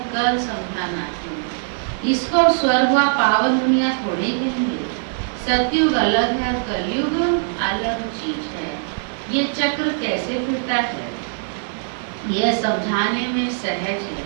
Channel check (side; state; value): left; silent; digital silence